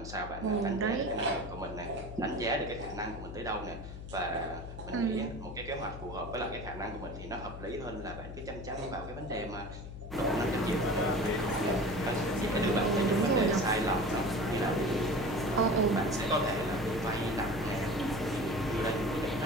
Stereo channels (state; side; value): noise; left; hum, 10 dB below the sound